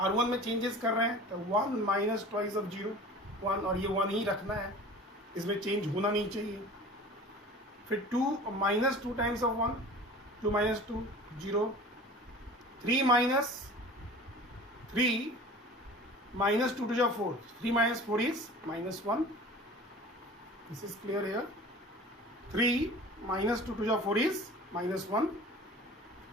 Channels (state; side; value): normal; both; correlation 0.40